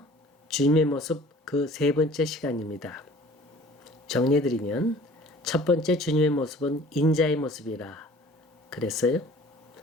주님의 모습 그 세 번째 시간입니다. 정리해드리면 첫 번째 주님의 모습은 인자의 모습이라 그랬어요.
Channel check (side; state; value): both; normal; correlation 0.48